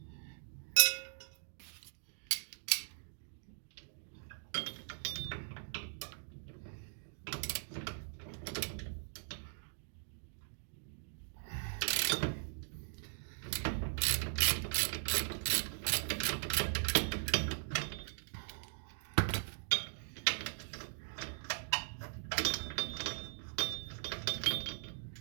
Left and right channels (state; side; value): silent; left; digital silence